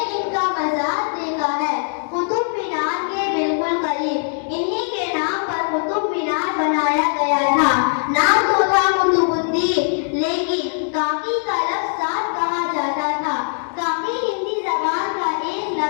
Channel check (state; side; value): silent; right; 65 dB below the other